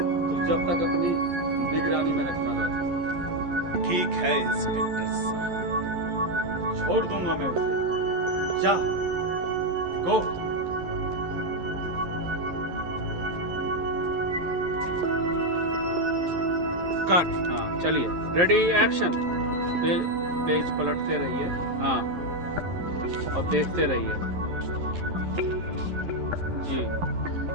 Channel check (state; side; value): late; left; 11 ms